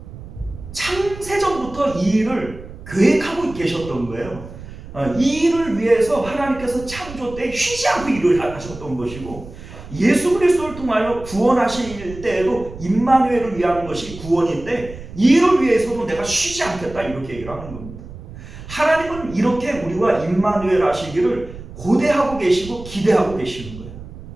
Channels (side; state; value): right; noise; rumble, 14 dB below the sound